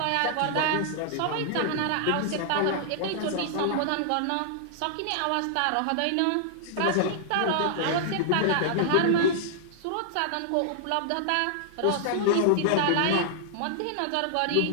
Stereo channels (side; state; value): both; different; correlation -0.01